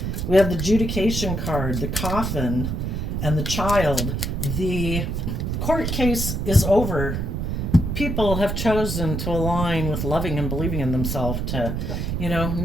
We have the adjudication card, the coffin, and the child. The court case is over. People have chosen to align with loving and believing in themselves to,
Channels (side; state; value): right; noise; rumble, 2 dB below the sound